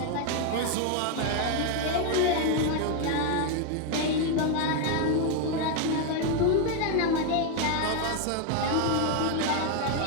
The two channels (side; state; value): both; different; correlation 0.01